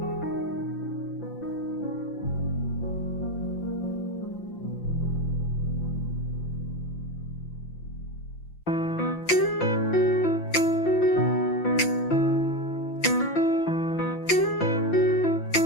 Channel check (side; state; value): right; late; 5.8 ms